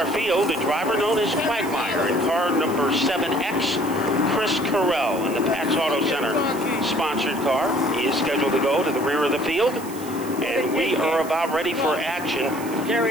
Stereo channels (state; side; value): noise; right; hiss, 16 dB below the sound